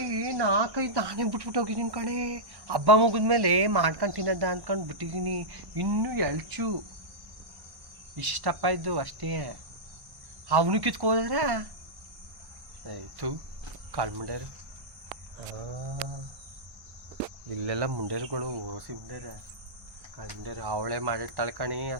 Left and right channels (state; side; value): late; left; 1.1 ms